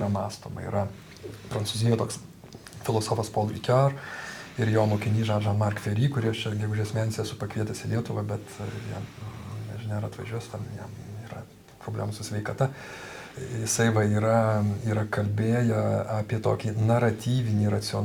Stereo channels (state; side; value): identical; both; correlation 1.00